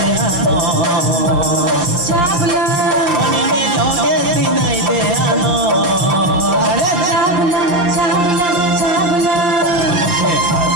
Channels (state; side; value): late; left; 5.7 ms